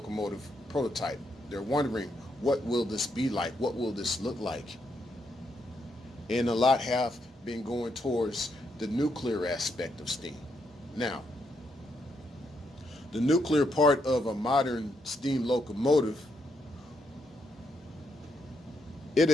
prototype. They're wondering, what will this be like? What will this look like? And a lot have been going towards the nuclear aspect of steam. Now, the nuclear part of a modern steam locomotive,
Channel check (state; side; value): normal; both; correlation 0.78